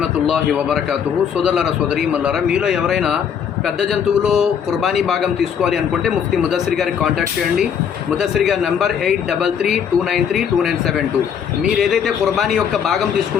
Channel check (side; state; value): right; quieter; 7.8 dB